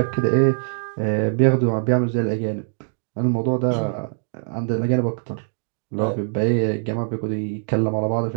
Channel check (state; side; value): silent; left; digital silence